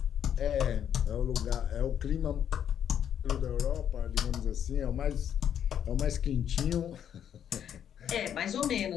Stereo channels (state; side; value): quieter; right; 9.2 dB